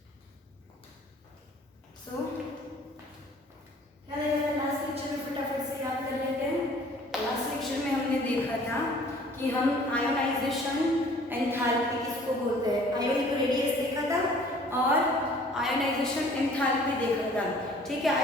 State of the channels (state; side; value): normal; both; correlation 0.53